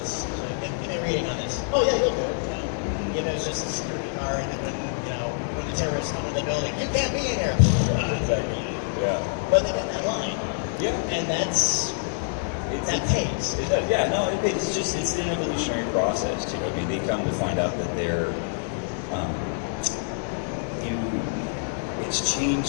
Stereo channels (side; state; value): right; silent; digital silence